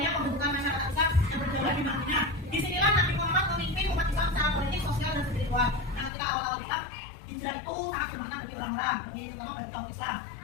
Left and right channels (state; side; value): drops out; right; at 6.1 s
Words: pembentukan masyarakat Islam yang berdaulat di Madinah. Disinilah Nabi Muhammad memimpin umat Islam secara politik, sosial, dan spiritual. Nah, ketika awal-awal Islam, hijrah itu sangat bermakna bagi orang-orang, terutama bagi kaum Islam.